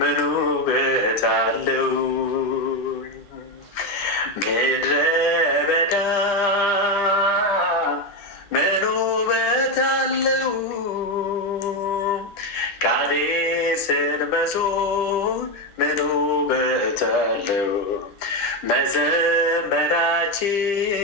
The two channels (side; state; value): right; late; 10 ms